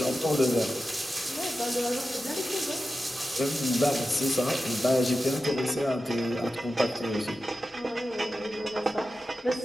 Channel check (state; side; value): normal; both; correlation 0.92